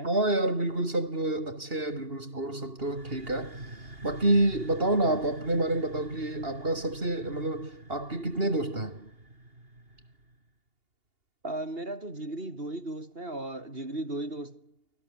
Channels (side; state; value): left; late; 2.8 ms